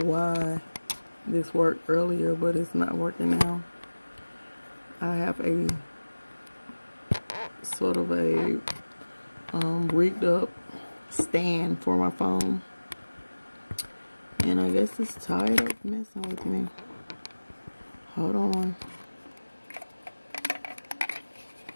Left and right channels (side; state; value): both; inverted; correlation -1.00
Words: why this worked earlier, but it's not working now. I have a sort of a rigged up stand for my phone. And I guess it's tired of messing with me. Hold on.